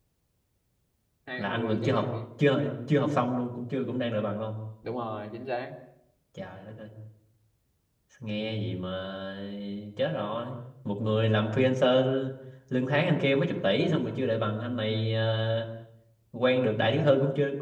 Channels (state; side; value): identical; both; correlation 1.00